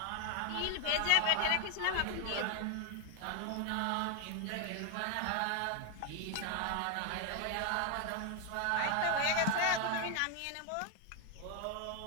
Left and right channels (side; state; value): both; different; correlation 0.00